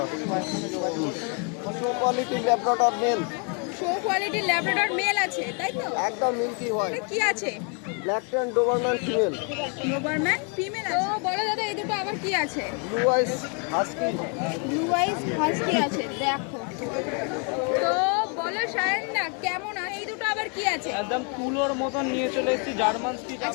show quality Labrador male. Show কোয়ালিটির Labrador male আছে, তাই তো? একদম মিল্কি হোয়াইট। এটা কি আছে? Black tan Doberman female. Doberman female আছে। তো বলো দাদা, এই দুটো আবার কি আছে? Blue ice husky. Blue ice husky আছে, দেখো। তো বলো সায়নদা, কেমন আছে? এই দুটো আবার কি আছে? একদম তুলোর মতন নিয়ে চলে এসেছি জার্মান স্পিচ।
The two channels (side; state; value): right; quieter; 37.6 dB